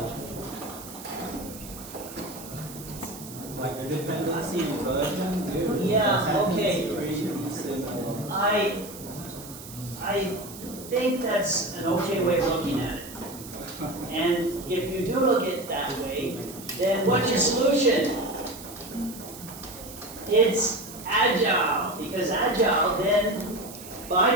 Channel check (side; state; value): right; noise; hiss, 14 dB below the sound